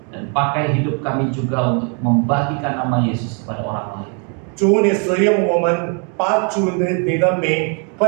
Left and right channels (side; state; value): left; quieter; 39.3 dB